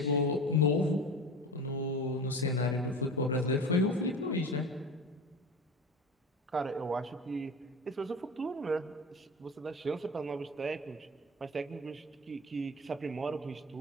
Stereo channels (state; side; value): normal; both; correlation 0.32